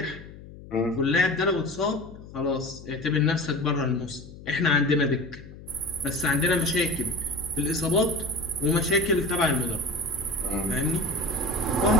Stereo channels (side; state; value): left; noise; hum, 17 dB below the sound